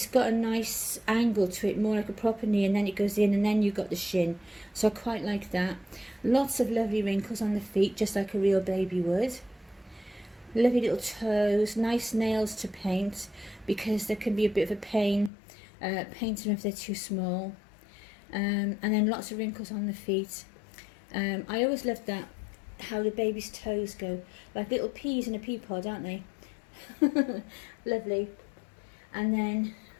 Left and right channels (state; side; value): drops out; right; at 15.3 s